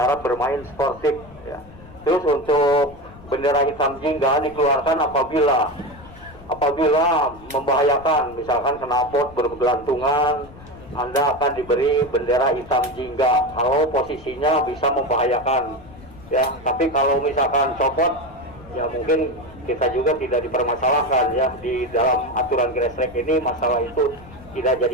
harap bermain sportif ya. Terus untuk bendera hitam jingga dikeluarkan apabila membahayakan, misalkan knalpot bergelantungan, Anda akan diberi bendera hitam jingga kalau posisinya bisa membahayakan ya. Tapi kalau misalkan copot ya mungkin kita juga tidak dipermasalahkan ya. Di dalam aturan grass track ini masalah itu tidak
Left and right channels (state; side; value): noise; left; rumble, 20 dB below the sound